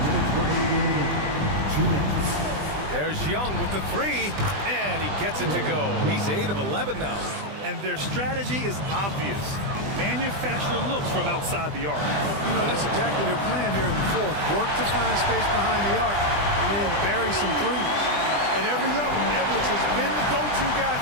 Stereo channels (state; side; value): late; left; 20 ms